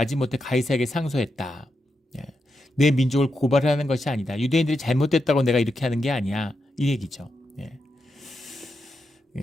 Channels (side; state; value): both; normal; correlation 0.86